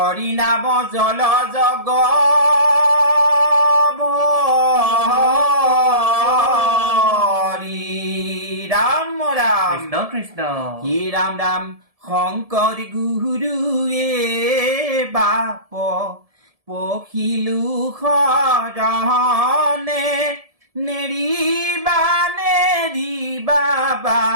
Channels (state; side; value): late; left; 1.7 ms